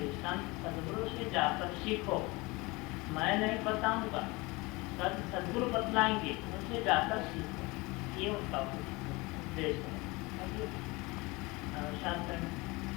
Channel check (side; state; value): right; quieter; 24.1 dB